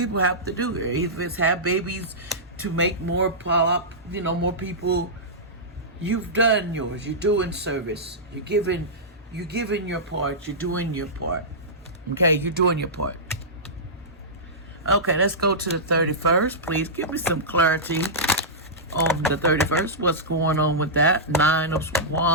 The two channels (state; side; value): normal; both; correlation -0.14